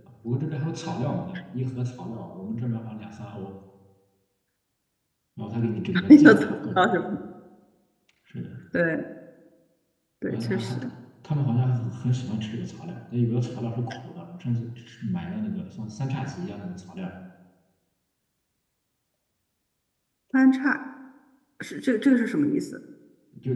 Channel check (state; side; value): identical; both; correlation 1.00